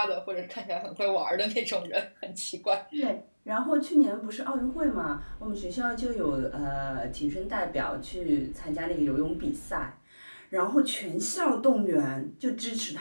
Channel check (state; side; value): inverted; both; correlation -1.00